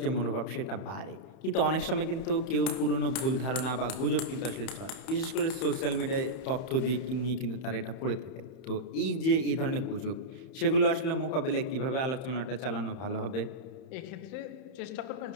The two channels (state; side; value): late; right; 31 ms